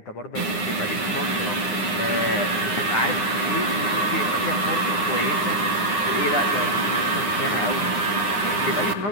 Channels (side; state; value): right; late; 9.8 ms